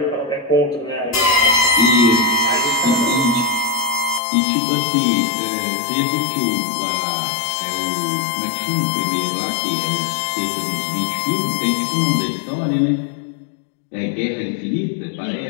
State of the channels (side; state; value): right; drops out; at 4.2 s